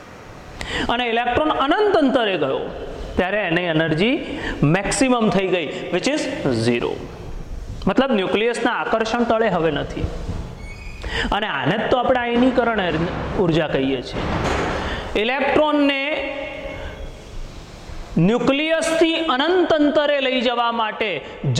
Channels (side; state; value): both; identical; correlation 1.00